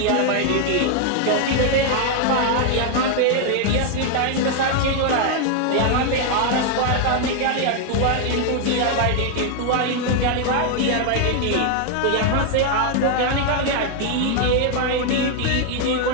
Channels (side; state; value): both; different; correlation 0.00